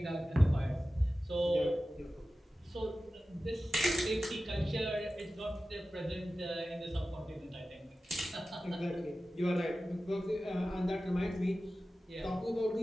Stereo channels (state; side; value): normal; both; correlation 0.95